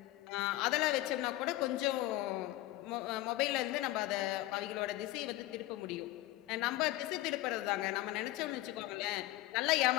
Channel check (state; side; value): quieter; right; 17.2 dB